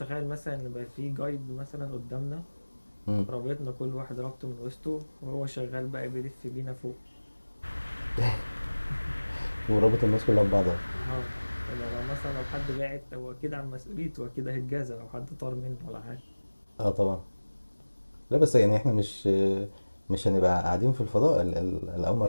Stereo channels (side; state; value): both; inverted; correlation -1.00